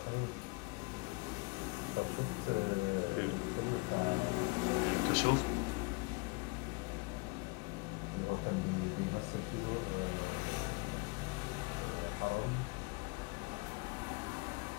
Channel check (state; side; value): quieter; right; 28.7 dB